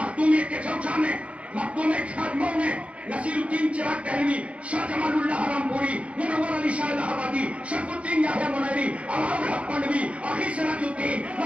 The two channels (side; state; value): left; late; 0.062 ms